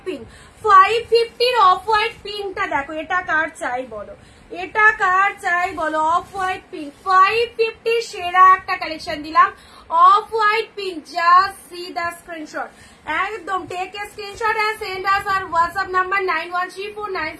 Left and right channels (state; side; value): identical; both; correlation 1.00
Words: pink. 550 off white পিঙ্কটা দেখো, এটা কার চাই বলো, এটা কার চাই বলো? অফ হোয়াইট পিঙ্ক 550, সেরা একটা কালেকশন দিলাম। Off white pink, just see the screenshot, একদম take a screenshot and send us our WhatsApp number